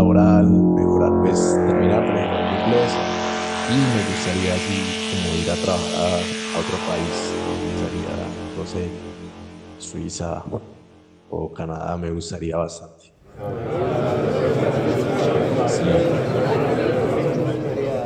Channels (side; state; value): both; identical; correlation 1.00